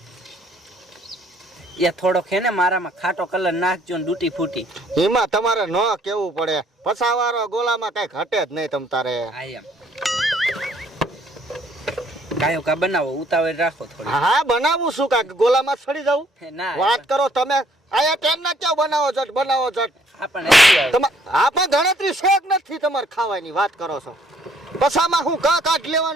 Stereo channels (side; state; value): both; normal; correlation 0.64